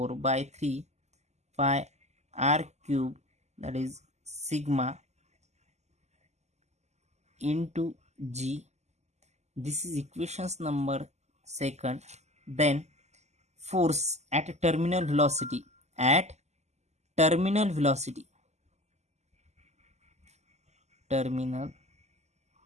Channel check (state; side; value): late; left; 0.33 ms